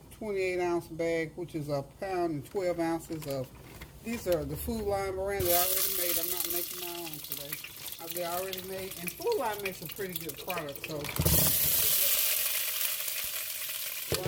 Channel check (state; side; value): identical; both; correlation 1.00